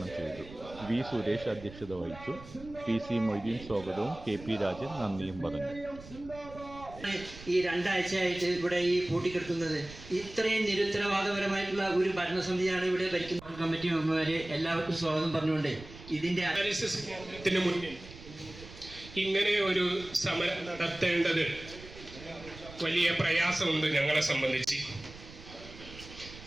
ചെയ്തു. V സുരേഷ് അധ്യക്ഷത വഹിച്ചു. PC മൊയ്തീൻ സ്വാഗതവും KP രാജൻ നന്ദിയും പറഞ്ഞു. ഈ 2 ആഴ്ചയായിട്ട് ഇവിടെ ഈ പൂട്ടിക്കെടുക്കുന്നത് ഇത്രയും നിരുത്തരവാദപരമായിട്ടുള്ള ഒരു ഭരണസമിതിയാണ് ഇവിടെ ഭരിക്കുന്ന കമ്മിറ്റി മെമ്പർമാരെ എല്ലാവർക്കും സ്വാഗതം പറഞ്ഞുകൊണ്ട് ഇതിന്റെ ഡയാലിസിസ് കേന്ദ്രത്തിന് മുന്നിൽ ഇങ്ങനെ ഒരു സമരം നടത്തേണ്ടത് വലിയ പ്രയാസമുണ്ട്. ഞങ്ങളെ സംബന്ധിച്ച്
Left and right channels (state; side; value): noise; right; rumble, 16 dB below the sound